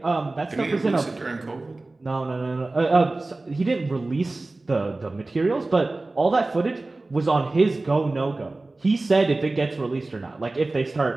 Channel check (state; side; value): quieter; left; 3.1 dB